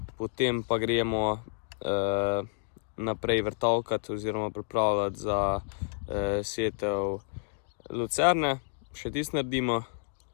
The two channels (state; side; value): silent; right; digital silence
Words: Potem pa gremo naprej vrtavkati oziroma pripravljati za setev lucerne. Še tisto naredimo,